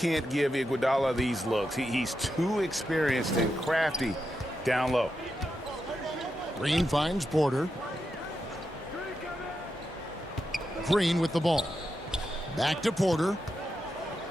give Iguodala these looks. He's too experienced and crafty down low. Green finds Porter. Green with the ball. Back to Porter.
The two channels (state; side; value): normal; both; correlation 0.87